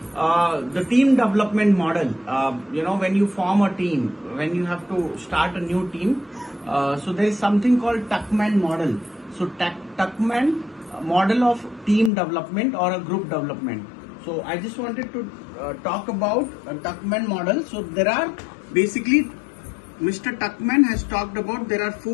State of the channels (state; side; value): drops out; right; at 12.1 s